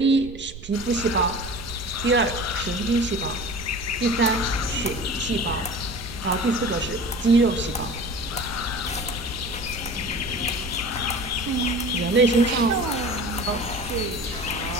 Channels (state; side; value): noise; right; rumble, 14 dB below the sound